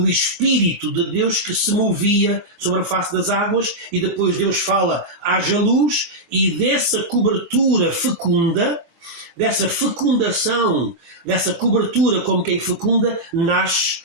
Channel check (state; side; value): late; left; 24 ms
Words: Espírito de Deus que se movia sobre a face das águas, e depois Deus fala, haja luz, e dessa cobertura fecunda, dessa fecundação, dessa cobertura como quem fecunda, nasce,